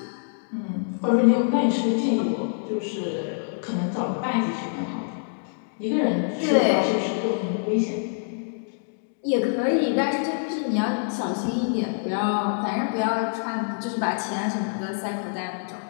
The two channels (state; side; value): silent; right; digital silence